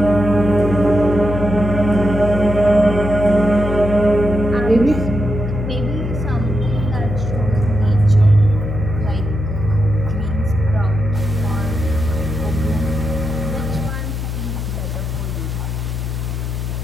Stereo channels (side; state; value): left; noise; hum, 4 dB below the sound